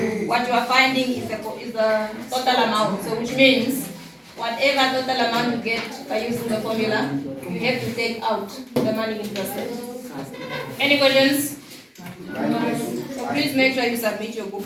what you are finding is the total amount. So which means whatever total amount you get by using the formula, you have to take out the money invested. Any questions? So please make sure you submit your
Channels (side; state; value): both; identical; correlation 1.00